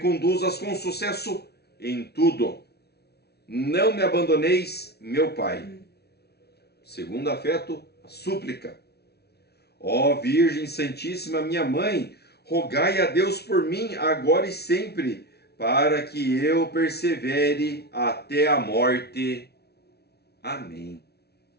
com sucesso em tudo. Não me abandoneis, meu Pai. Segundo afeto, a súplica. Ó Virgem Santíssima, minha Mãe, rogai a Deus por mim agora e sempre, para que eu persevere até a morte. Amém.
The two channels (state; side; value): late; right; 0.48 ms